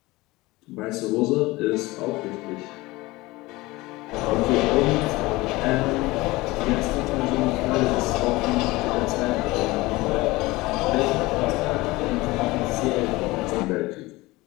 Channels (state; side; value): quieter; right; 20.8 dB